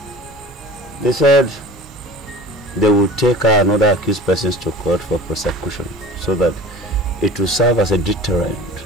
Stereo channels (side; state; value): both; normal; correlation 0.40